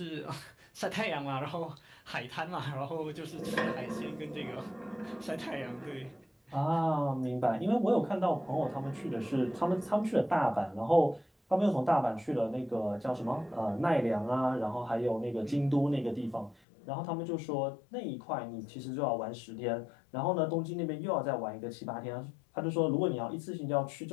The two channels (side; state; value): right; drops out; at 16.6 s